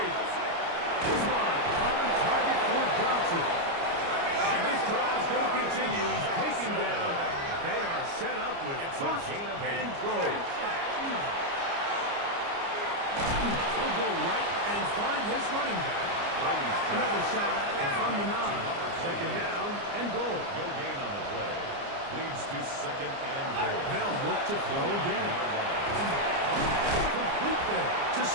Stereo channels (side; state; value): left; late; 29 ms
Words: This one on target for Johnson. And this drive is going to continue. He's taken down. They are set up with 1st and goal. He'll go right and find his running back. Another shot at it from the 9. Second down and goal. No gain on the play. Leads to second and goal. They'll look to throw again. Complete there to